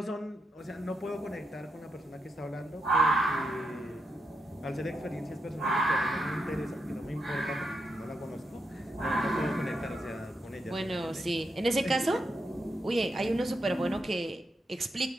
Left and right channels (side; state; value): both; normal; correlation 0.84